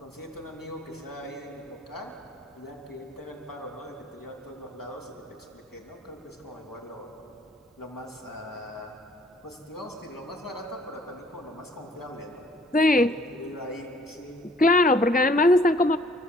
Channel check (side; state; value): both; normal; correlation 0.59